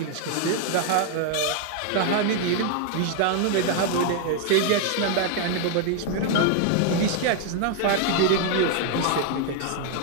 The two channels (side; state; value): both; different; correlation 0.00